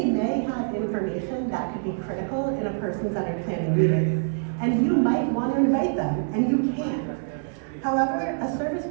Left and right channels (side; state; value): left; silent; digital silence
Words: may have information that could be critical in a person-centered planning meeting. And you might want to invite them, and you can. However, a service